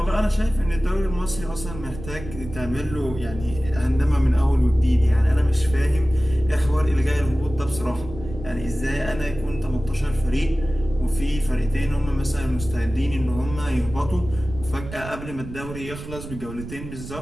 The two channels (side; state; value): right; noise; rumble, 12 dB below the sound